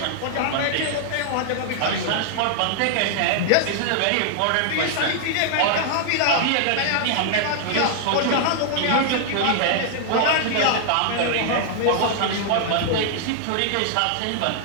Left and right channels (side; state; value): both; different; correlation -0.01